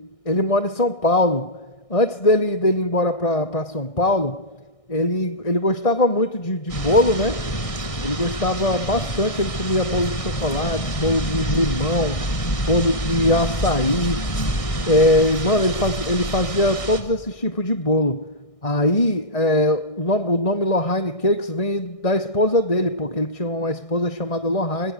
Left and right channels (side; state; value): right; late; 1.6 ms